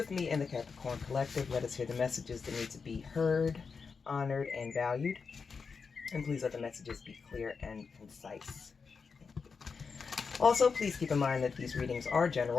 me and the Capricorn Collective. Let us hear the messages that need to be heard, honored, and valued. And please let the messages be clear and concise. Also, please keep in mind that these readings are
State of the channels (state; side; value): quieter; right; 5.3 dB